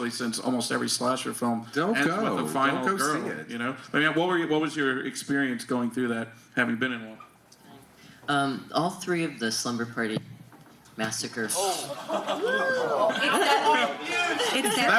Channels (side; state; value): both; identical; correlation 1.00